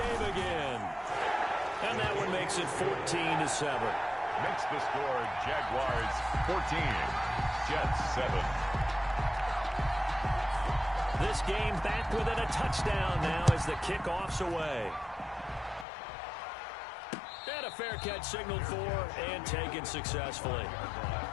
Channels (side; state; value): right; drops out; at 15.9 s